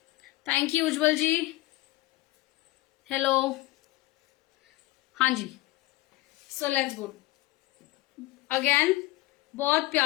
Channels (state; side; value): quieter; right; 18.9 dB